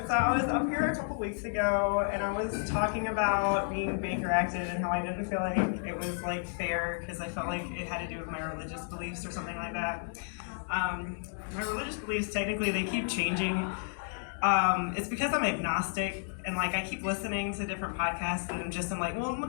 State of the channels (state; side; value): silent; right; 57 dB below the other